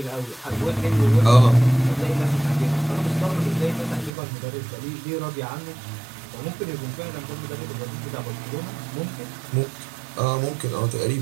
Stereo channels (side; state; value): left; drops out; at 4.1 s